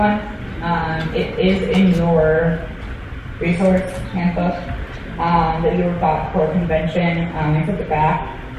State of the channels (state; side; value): identical; both; correlation 1.00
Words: It is in your resource handbook that you got for convention. It's at the back.